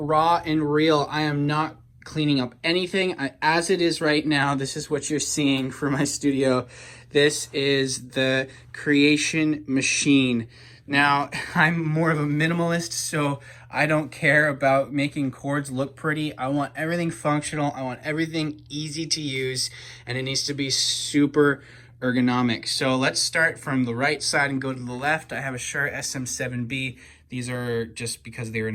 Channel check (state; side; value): identical; both; correlation 1.00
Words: and real. I am not cleaning up anything. As it is right now, this is what you're seeing for my studio. This is the creation machine. Now, I'm more of a minimalist, so I don't care about making chords look pretty. I want everything functional. I want everything easy to use, and it needs to be super ergonomic. So let's start from the right side and go to the left. I have a Shure SM7B. These are just because they're in